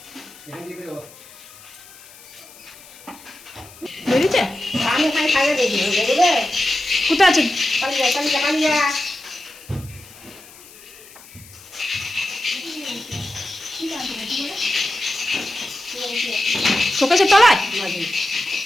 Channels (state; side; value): noise; left; hiss, 21 dB below the sound